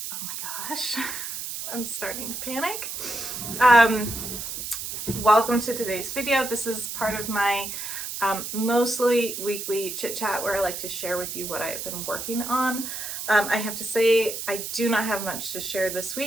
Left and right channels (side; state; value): right; noise; hiss, 6 dB below the sound